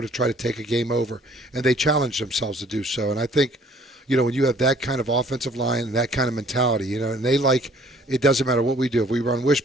try to take a game over, and they challenge themselves to do so. And I think, when you have that kind of offensive line and that kind of mentality, and they it doesn't matter what we do. If we run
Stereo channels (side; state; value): both; normal; correlation 0.57